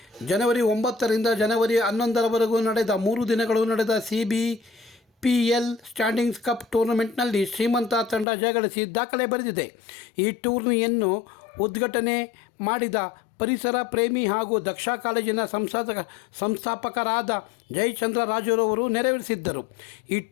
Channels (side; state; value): right; drops out; at 8.2 s